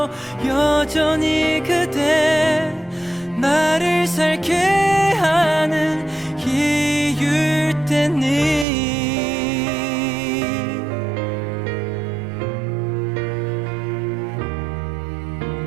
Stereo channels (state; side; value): drops out; left; at 8.7 s